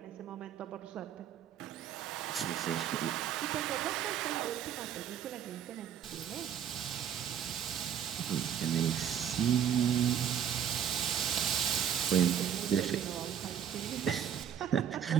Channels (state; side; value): quieter; left; 9.1 dB